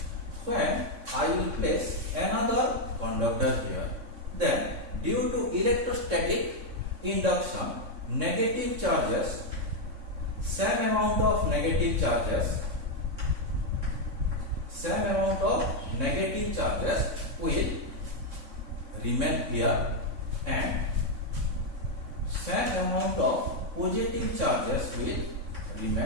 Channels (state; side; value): late; left; 3.6 ms